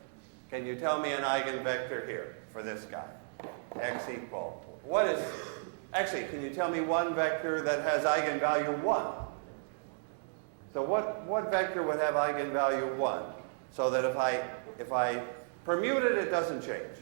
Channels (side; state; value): left; silent; digital silence